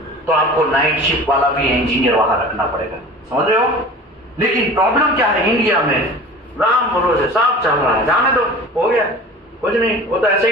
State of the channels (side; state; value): both; normal; correlation 0.39